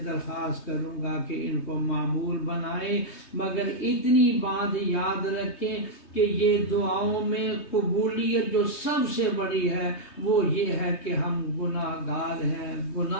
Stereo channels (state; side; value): late; right; 3.2 ms